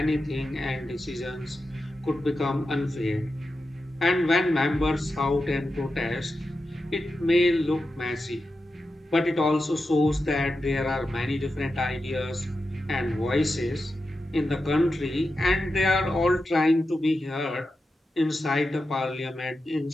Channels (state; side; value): normal; both; correlation 0.90